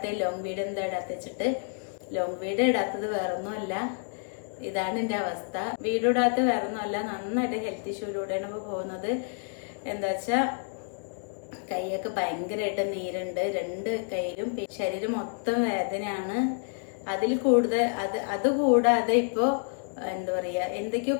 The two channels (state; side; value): silent; right; 59 dB below the other